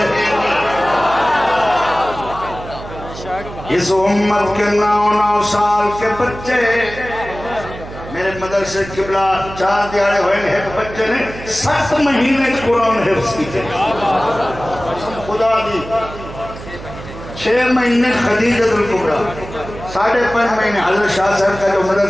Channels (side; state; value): right; noise; hum, 13 dB below the sound